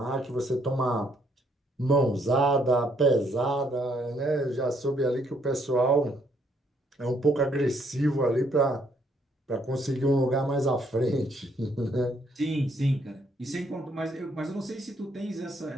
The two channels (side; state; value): both; normal; correlation 0.70